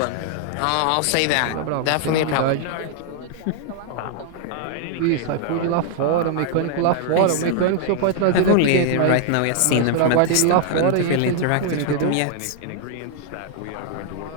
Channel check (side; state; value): both; different; correlation 0.00